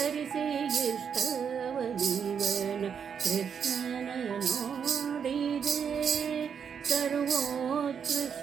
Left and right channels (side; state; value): left; quieter; 7.2 dB